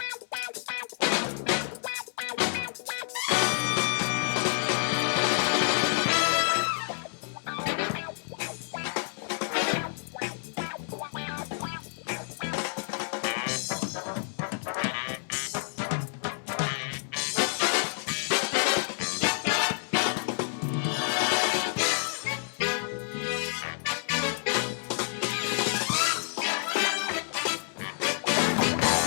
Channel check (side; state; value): right; silent; 59 dB below the other